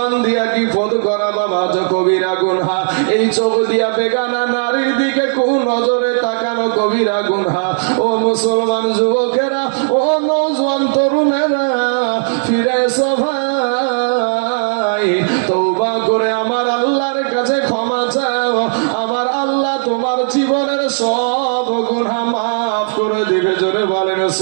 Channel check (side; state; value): left; silent; 69 dB below the other